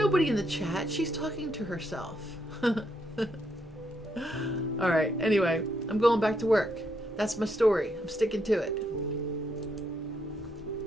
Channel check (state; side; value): normal; both; correlation 0.77